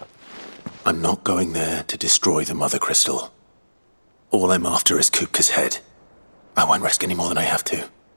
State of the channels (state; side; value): inverted; both; correlation -1.00